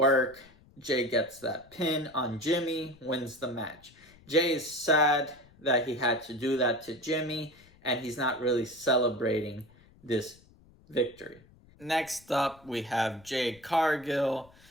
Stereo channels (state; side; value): noise; left; rumble, 27 dB below the sound